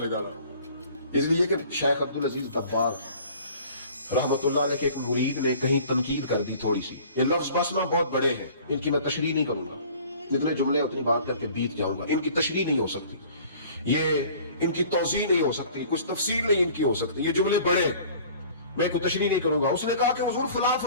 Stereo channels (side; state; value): both; inverted; correlation -0.49